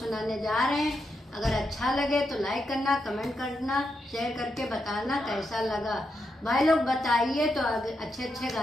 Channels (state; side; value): normal; both; correlation 0.84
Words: जा रहे हैं। अगर अच्छा लगे तो लाइक करना, कमेंट करना, शेयर करके बताना कैसा लगा। भाई लोग बताइए तो अच्छे अच्छे